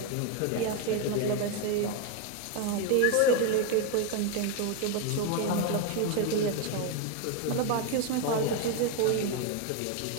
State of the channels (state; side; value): different; both; correlation 0.01